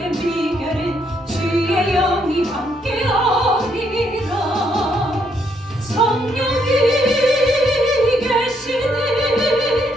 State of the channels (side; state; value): both; normal; correlation 0.73